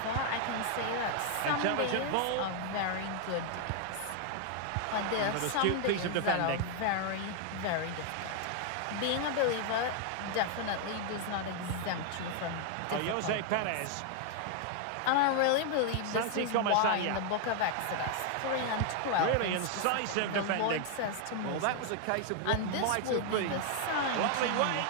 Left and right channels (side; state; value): both; different; correlation 0.00